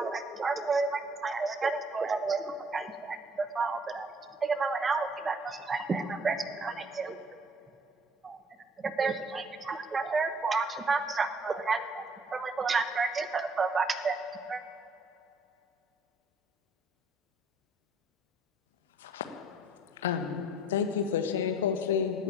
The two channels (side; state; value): both; normal; correlation 0.59